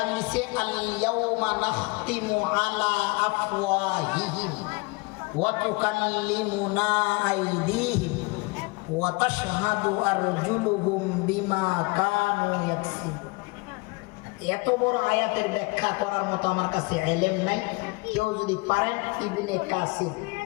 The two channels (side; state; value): right; quieter; 26.8 dB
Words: দিছে আল ইয়াউমা নাখতিমু আলা আফওয়াহিহিম ওয়া তুকাল্লিমুনা আইদিহিম ওয়া তাশহাদু আরজুলুহুম বিমা কানু ইয়াকসিবুন। এত বড় আয়াতের ব্যাখ্যা করার মতো আমার কাছে ইলম নাই। কেউ যদি পারেন ইবনে কাসির